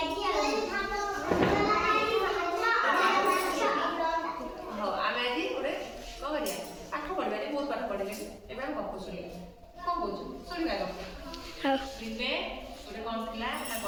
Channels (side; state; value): both; identical; correlation 1.00